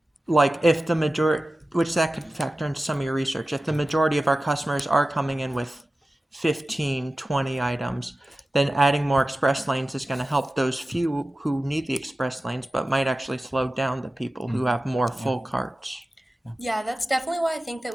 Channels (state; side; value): normal; both; correlation 0.95